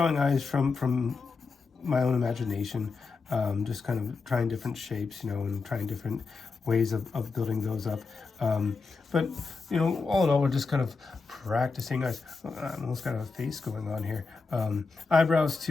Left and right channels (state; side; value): quieter; right; 4.4 dB